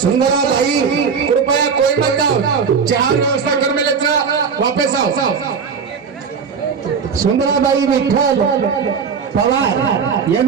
भाई कृपया कोई मत जाओ चार व्यवस्था कर में लेकर वापस आओ सुंदराबाई विठ्ठल पवार ये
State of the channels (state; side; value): quieter; left; 6.1 dB